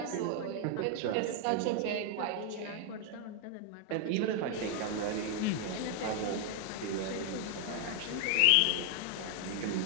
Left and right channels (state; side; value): different; both; correlation 0.00